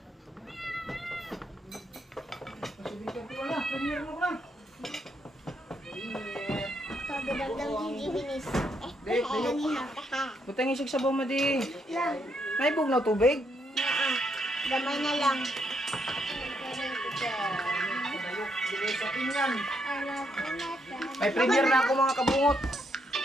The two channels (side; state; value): both; normal; correlation 0.76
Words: Pagdadagdag yung gibinis. Kanina. Butang isig sa mo di. Lang. Naibog na tubig. Damay na lang. May premier na ako mga kabungot.